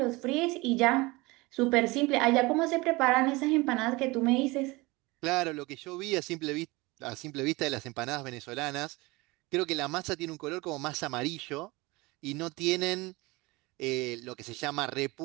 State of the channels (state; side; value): quieter; left; 23.2 dB